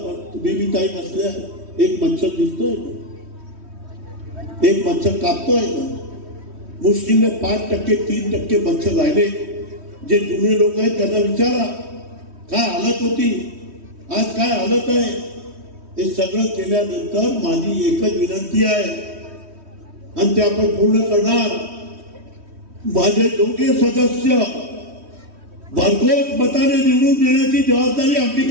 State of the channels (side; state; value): left; late; 3.1 ms